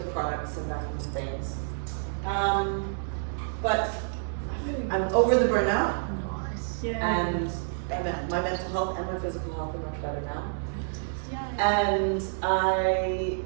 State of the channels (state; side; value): silent; left; digital silence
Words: products and back into things. But I'm over the burnout, and my mental health and my physical health are much better now. And I